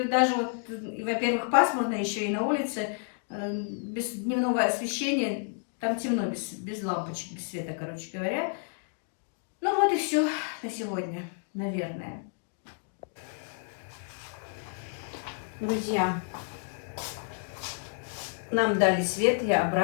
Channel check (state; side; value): silent; right; 57 dB below the other